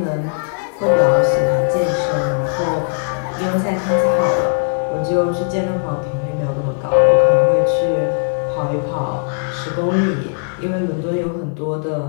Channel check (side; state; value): right; silent; digital silence